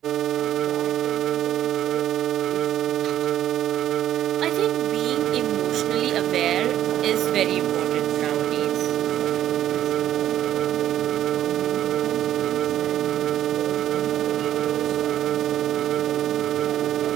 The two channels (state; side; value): quieter; left; 11.7 dB